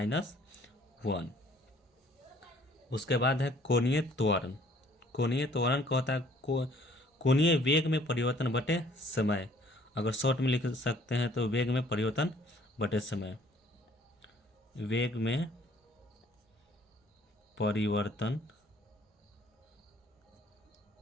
उसके बाद है कोणीय त्वरण। कोणीय त्वरण का होता है कोणीय वेग में परिवर्तन बटे समय। अगर शॉर्ट में लिख सकते हैं तो वेग में परिवर्तन बटे समय, वेग में परिवर्तन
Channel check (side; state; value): both; normal; correlation 0.58